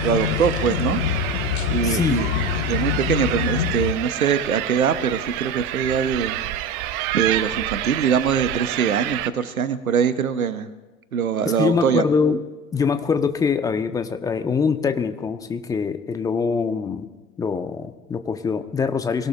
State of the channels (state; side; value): normal; both; correlation 0.34